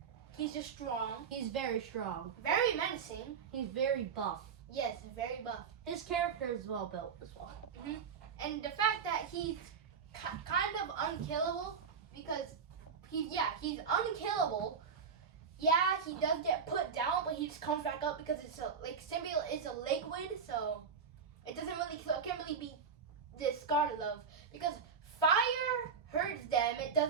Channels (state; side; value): quieter; left; 6.1 dB